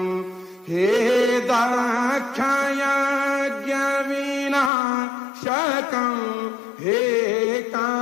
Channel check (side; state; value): right; drops out; at 4.7 s